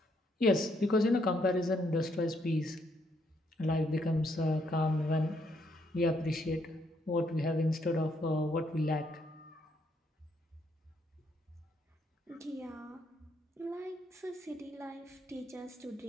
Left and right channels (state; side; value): normal; both; correlation 0.73